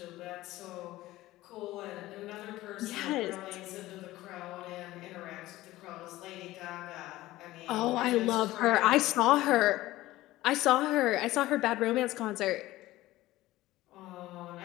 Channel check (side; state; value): right; quieter; 17.0 dB